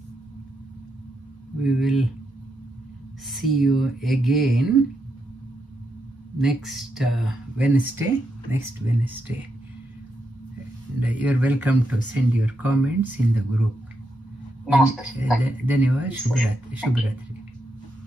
we will see you again next Wednesday. And you're welcome to send your comments in the group. Namaste. Dhanyavad. Shubhratri.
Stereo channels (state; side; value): normal; both; correlation 0.82